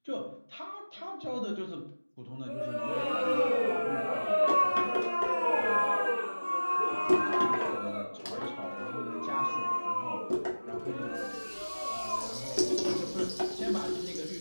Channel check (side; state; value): both; inverted; correlation -1.00